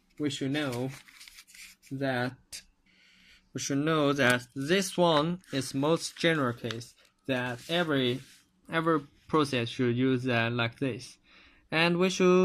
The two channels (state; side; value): identical; both; correlation 1.00